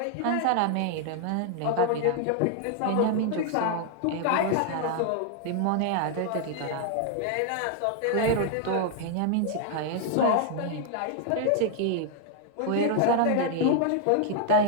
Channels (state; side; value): different; both; correlation 0.00